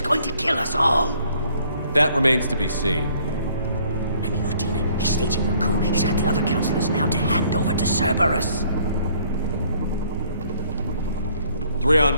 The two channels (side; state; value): both; inverted; correlation -0.61